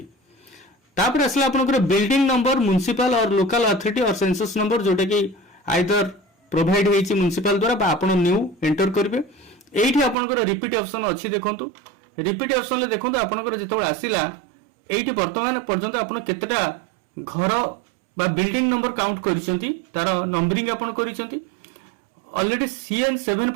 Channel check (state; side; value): drops out; left; at 10.2 s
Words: तापर आसला आपनकर बिल्डिंग नंबर म्युनिसिपल और लोकल अथॉरिटी और सेंसस नंबर जोटा कि आइदर प्रोवाइड होईची म्युनिसिपल द्वारा बा आपण न्यू एंटर करबे एठी आपनकर रिपीट ऑप्शन अछि देखंतु रिपीट ऑप्शन ले देखंतु आपनकर जेतो आसिला एठी वर्तमान पर्यंत आपण केतेटा घर बा बिल्डिंग नंबर काउंट करिसंती तार नंबरिंग आपण करिसंती ऑलरेडी CN7